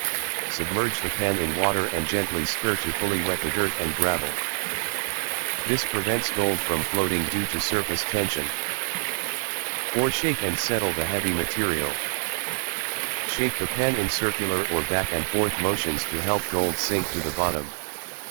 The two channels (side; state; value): left; silent; 59 dB below the other